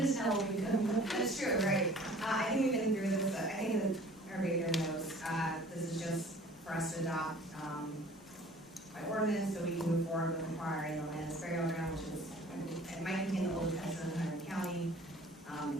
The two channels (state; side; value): normal; both; correlation 0.49